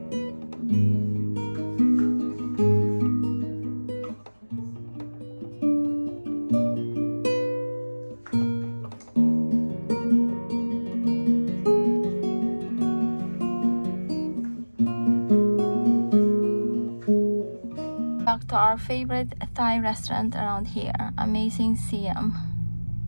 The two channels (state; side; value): inverted; both; correlation -1.00